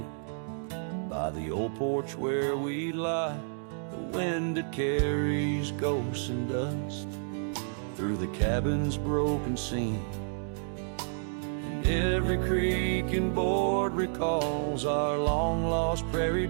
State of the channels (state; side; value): silent; left; digital silence